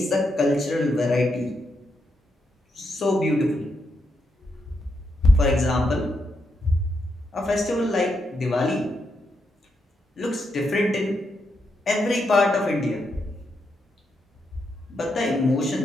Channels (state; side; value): normal; both; correlation 0.82